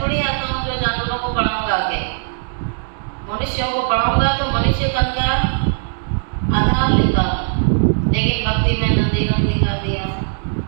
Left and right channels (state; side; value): silent; left; digital silence